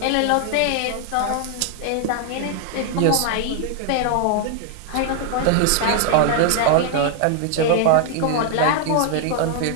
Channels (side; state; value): both; different; correlation 0.00